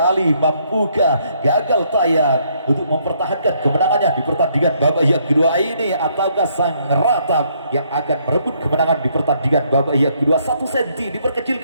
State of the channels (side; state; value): both; inverted; correlation -0.70